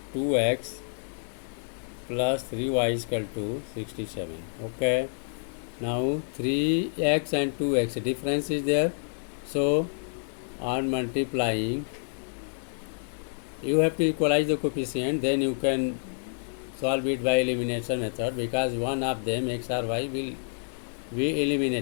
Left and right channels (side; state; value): right; silent; digital silence